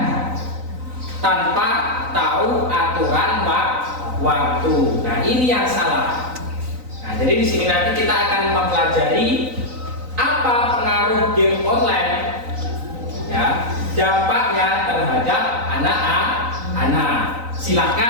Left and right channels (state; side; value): late; left; 3.9 ms